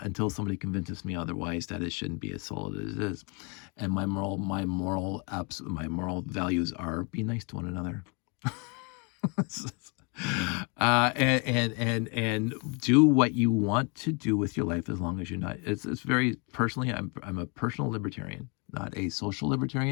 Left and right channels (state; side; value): quieter; right; 33.3 dB